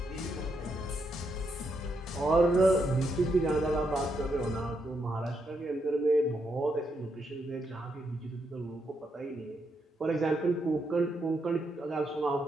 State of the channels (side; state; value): both; normal; correlation 0.80